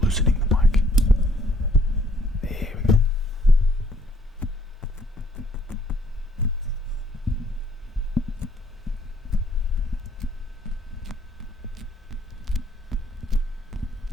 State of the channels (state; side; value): normal; both; correlation 0.66